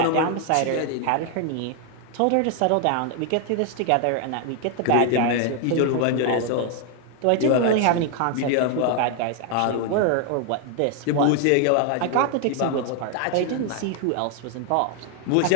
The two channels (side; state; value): both; different; correlation 0.00